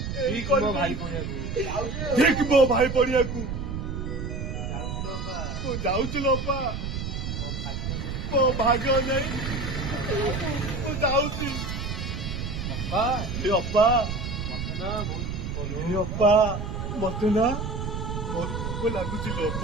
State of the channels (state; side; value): noise; right; rumble, 4 dB below the sound